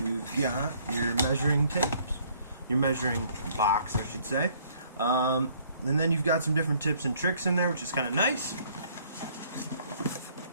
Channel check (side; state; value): both; inverted; correlation -0.61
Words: got your measuring tapes, your measuring box, I should say, and then you've got some different tips and tricks in there, which is kind of nice.